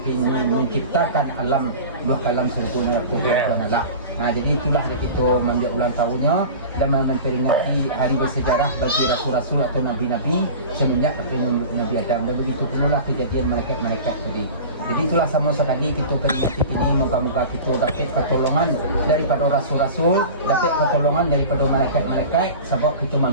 menciptakan alam dua kalam sergona ko Tuhan Allah. Jadi itulah kita mengambil ulang tahunnya dan memperingati hari bersejarah bagi rasul-rasul atau nabi-nabi semenjak Nabi Adam dan begitu pula kejadian malaikat-malaikat tadi. Jadi itulah sama sekali kita peringati ini moga-moga kita dapat pertolongan daripada rasul-rasul, dapat pertolongan daripada malaikat-malaikat sebab kita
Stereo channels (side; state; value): both; inverted; correlation -0.35